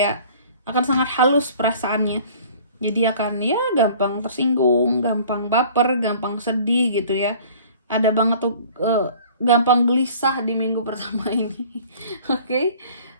akan sangat halus perasaannya. Jadi akan ya gampang tersinggung, gampang baper, gampang sedih gitu ya. Ada banget tuh gampang gelisah di minggu pertama ini. Oke.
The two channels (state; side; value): inverted; both; correlation -0.49